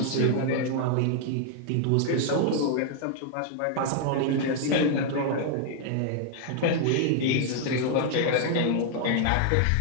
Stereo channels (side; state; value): both; different; correlation 0.00